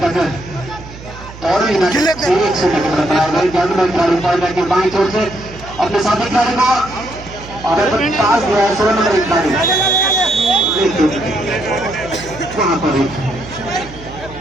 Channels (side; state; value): right; noise; hum, 16 dB below the sound